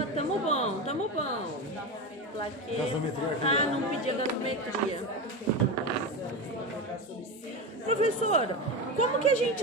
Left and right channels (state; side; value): normal; both; correlation 0.20